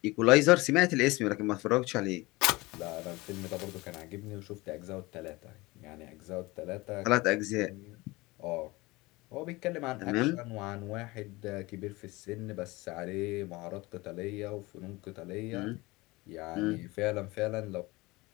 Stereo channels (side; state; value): right; quieter; 22.1 dB